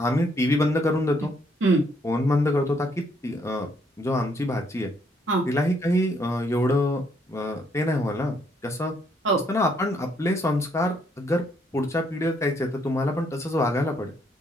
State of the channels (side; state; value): both; normal; correlation 0.70